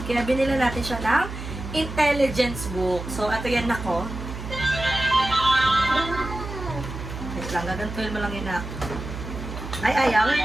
Kaya binila natin siya ng intelligence book. So, ito yan ako. Wait lang, gagantuin mo lang yun ako. Ay, ayaw.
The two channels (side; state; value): right; noise; hum, 8 dB below the sound